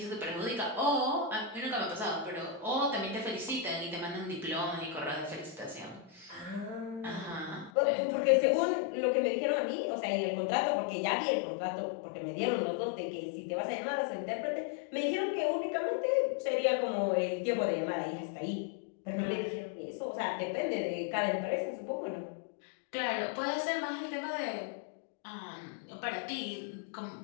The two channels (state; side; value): drops out; right; at 7.7 s